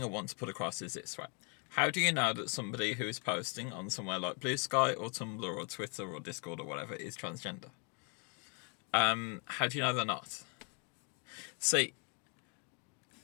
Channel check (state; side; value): quieter; right; 34.0 dB